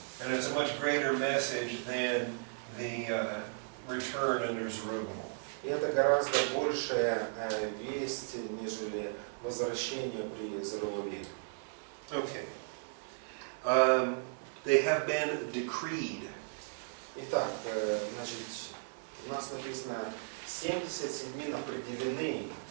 And it's a much greater message than the return under Zerubbabel. И это гораздо большая весть, нежели возвращение при Зоровавеле. Okay. They have been decreed. Итак, значит, у нас написано 70 седьмин определены,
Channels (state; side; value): silent; left; digital silence